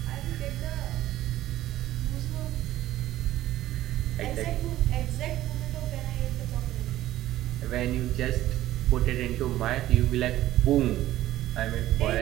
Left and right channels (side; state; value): left; quieter; 14.4 dB